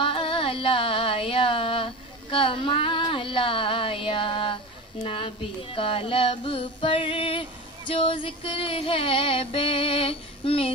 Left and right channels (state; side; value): normal; both; correlation 0.29